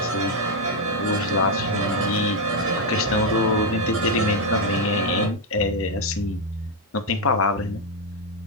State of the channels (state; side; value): normal; both; correlation 0.02